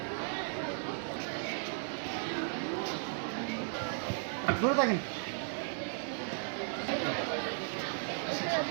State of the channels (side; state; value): left; silent; digital silence